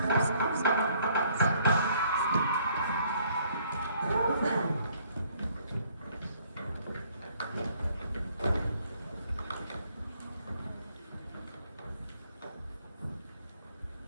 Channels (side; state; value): both; inverted; correlation -0.64